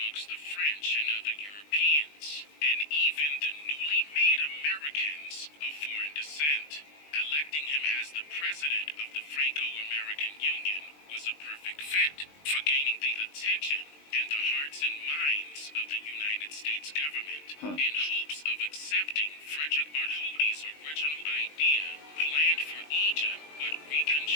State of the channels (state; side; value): late; right; 20 ms